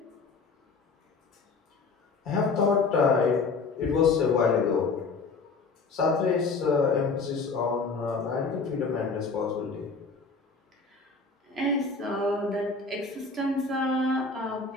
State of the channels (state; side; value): quieter; right; 4.3 dB